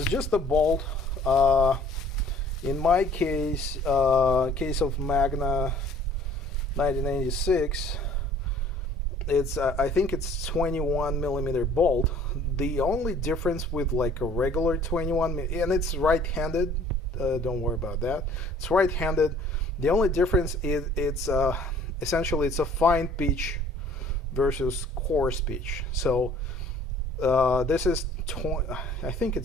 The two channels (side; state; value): both; normal; correlation 0.54